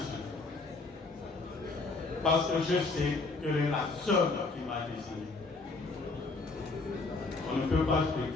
Parce que je sais que c'est la seule qui m'a désigné. On ne peut pas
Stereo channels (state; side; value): quieter; right; 3.7 dB